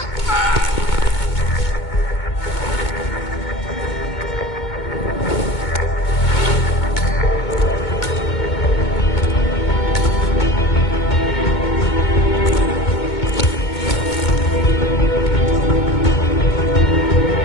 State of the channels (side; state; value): right; late; 2.2 ms